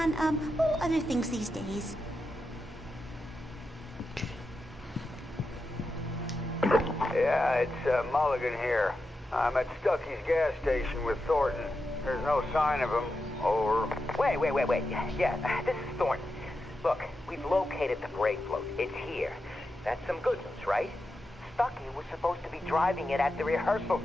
other things these days. Yeah, it's Mulligan here. I'm at Stucky's gas station with Thornton. There's no sign of him. Over. Wait. Yeah, this is Thornton. Look, we've located the brake float. It's here. That's some good news, right? Stucky was supposed to be driving it at the rehearsal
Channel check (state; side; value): normal; both; correlation 0.89